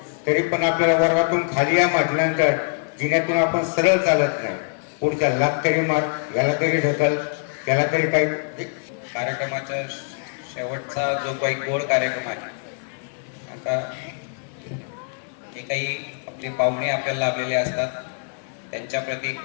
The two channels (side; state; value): right; silent; 59 dB below the other